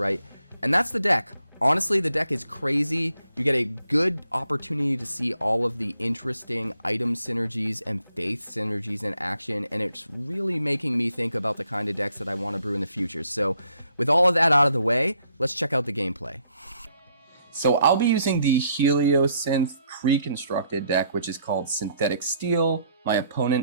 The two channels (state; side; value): inverted; both; correlation -0.70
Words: And that's the deck. Honestly, the deck is crazy. You get a good opportunity to see all of the interesting item synergies and faith synergies in action, and it's really making me think about the kind of decks that I want to brew in the future. So with all of that out of the way, let's check out the gameplay. So I'll be using the Heliosynth pre-constructed deck, which is called Synthetic Steel. My